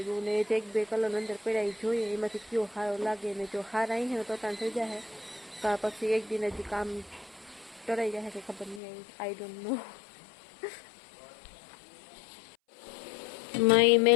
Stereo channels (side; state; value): right; drops out; at 8.8 s